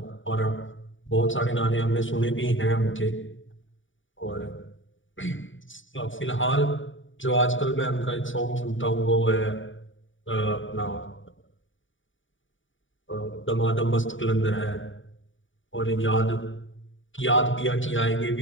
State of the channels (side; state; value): right; late; 0.56 ms